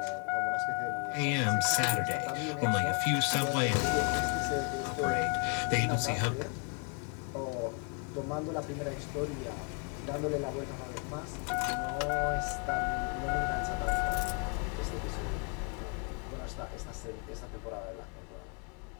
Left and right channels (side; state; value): right; quieter; 37.4 dB